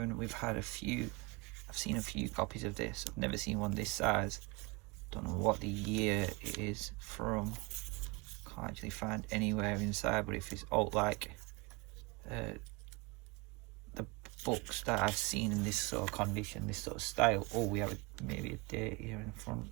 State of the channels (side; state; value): left; quieter; 26.3 dB